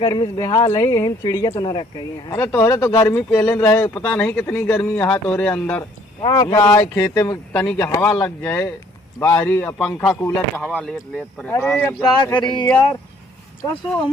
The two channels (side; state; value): both; normal; correlation 0.61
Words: से बेहाल है, यही चिड़िया तो न रख गई है। अरे तोहरे तो गर्मी पहले रहे, पता नहीं कितनी गर्मी यहाँ तोहरे अंदर यहाँ खेते में तनी के हवा लग जाए, बाहरी पंखा कूलर का हवा लेत लेत परेशान। अरे अब क्या करी यार, कसो